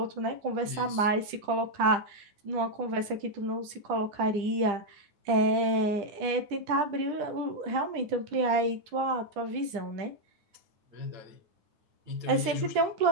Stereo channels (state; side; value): late; left; 10 ms